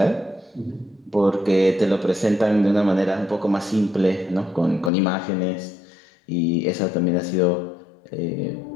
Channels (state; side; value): drops out; right; at 4.9 s